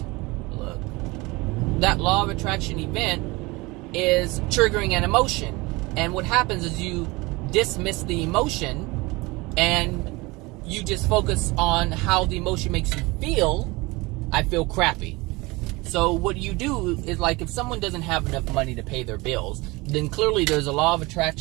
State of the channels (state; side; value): quieter; left; 23.5 dB